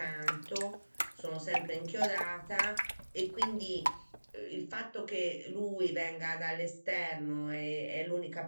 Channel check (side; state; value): both; inverted; correlation -1.00